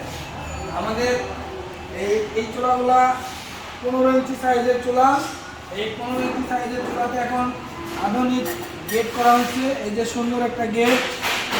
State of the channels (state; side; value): identical; both; correlation 1.00